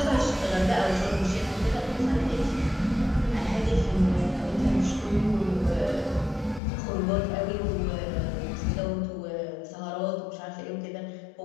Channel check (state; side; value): drops out; right; at 6.6 s